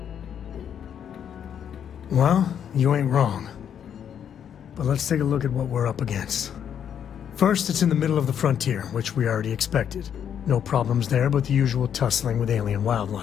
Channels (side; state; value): right; quieter; 8.7 dB